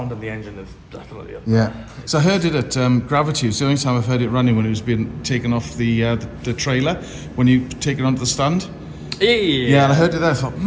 of the engine is definitely up. Yeah. So I heard it at Gravity. It's the only time I've heard it running when it was being taken off the trailer, when you take it onto the stand. Yeah, and I heard it there. I thought,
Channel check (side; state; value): both; identical; correlation 1.00